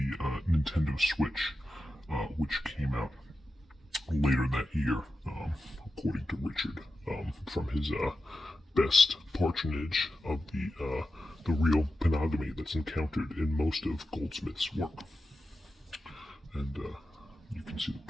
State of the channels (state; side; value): normal; both; correlation 0.91